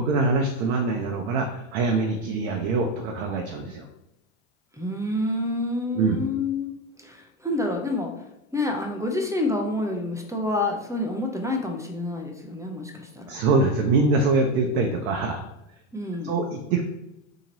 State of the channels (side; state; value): both; normal; correlation 0.14